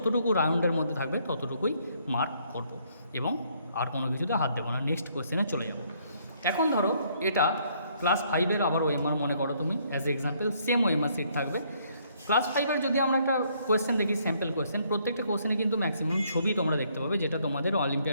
রাউন্ডের মধ্যে থাকবে ততটুকুই মার্ক করব এবং আর কোনো কিছুতে হাত দেবো না। নেক্সট কোয়েশ্চেনে চলে যাব। এখন ধরো এটা ক্লাস 5-এর আবার ওএমআর মনে করো তুমি, as example same OMR sheet থাকবে। ক্লাস 5-এর যদি আমরা একটা কোয়েশ্চেন দেখি, স্যাম্পল কোয়েশ্চেন, প্রত্যেকটা কোয়েশ্চেনে কিন্তু ম্যাক্সিমাম ছবি তোমরা দেখতে পাবে, যেটা তোমাদের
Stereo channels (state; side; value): inverted; both; correlation -0.68